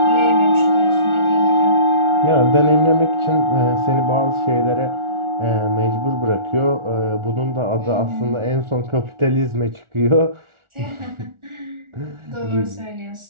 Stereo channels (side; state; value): left; late; 1.4 ms